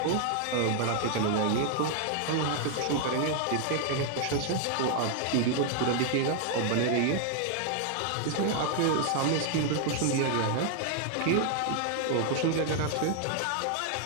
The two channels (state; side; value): different; both; correlation 0.00